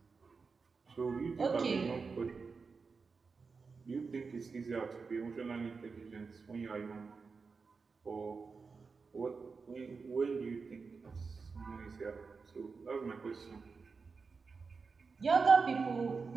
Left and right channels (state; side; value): quieter; left; 4.8 dB